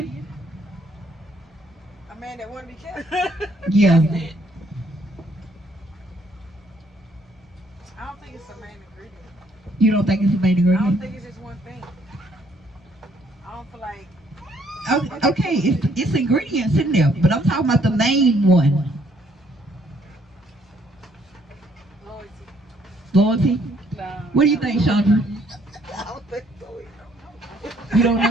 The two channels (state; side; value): normal; both; correlation 0.67